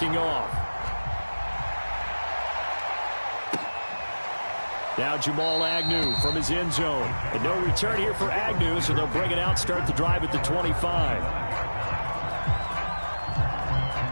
off. Now Jamal Agnew from his end zone. And no return here for Agnew, so they'll bring it out, start the drive at the 25.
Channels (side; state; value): both; inverted; correlation -1.00